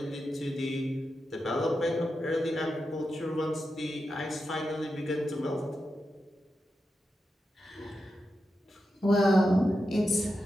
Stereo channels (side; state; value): both; normal; correlation 0.89